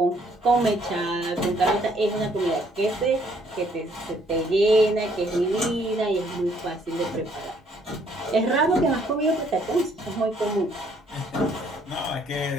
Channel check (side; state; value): both; normal; correlation 0.65